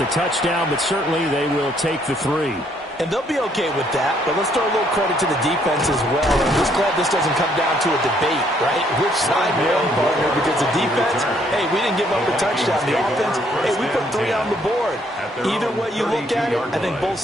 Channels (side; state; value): both; normal; correlation 0.68